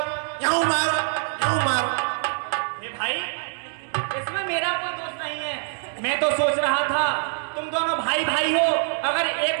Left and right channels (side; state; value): left; silent; 62 dB below the other